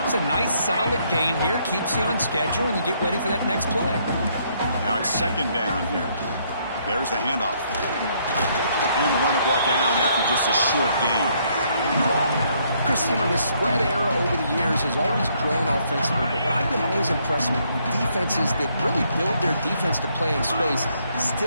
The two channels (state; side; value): inverted; both; correlation -0.70